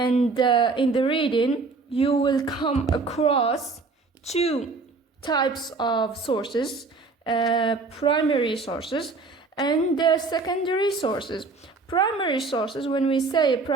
in the reading you will come across 2 types of sources, primary sources and secondary sources. Primary sources, when we say a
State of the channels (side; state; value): left; quieter; 4.0 dB